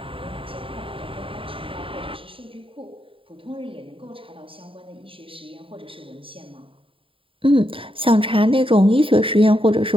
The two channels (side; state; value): left; late; 0.26 ms